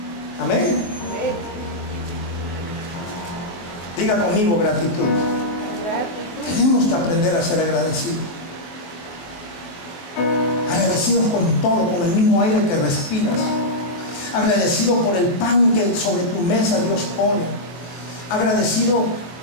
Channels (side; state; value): right; late; 24 ms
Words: Amén. Diga conmigo gratitud. Tenemos que aprender a ser agradecidos. Agradecidos con todo, con el mismo aire que respiras. Agradecido por el pan que sobre tu mesa Dios pone. Agradecido